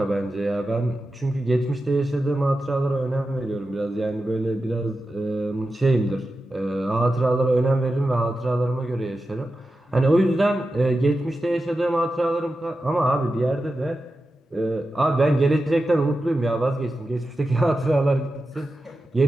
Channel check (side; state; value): both; normal; correlation 0.91